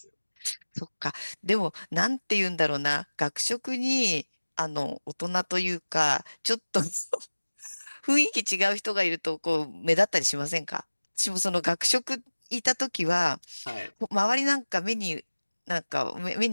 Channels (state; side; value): inverted; both; correlation -1.00